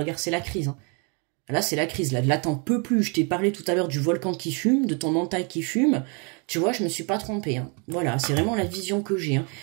c'est la crise. Hein. Là, c'est la crise. Là, t'en peux plus. Je t'ai parlé tout à l'heure du volcan qui fume, de ton mental qui fume. Tu vois, je me suis pas trompée. Hein. Voilà, c'est vraiment la vision que j'ai. Hein.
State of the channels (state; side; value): quieter; left; 34.9 dB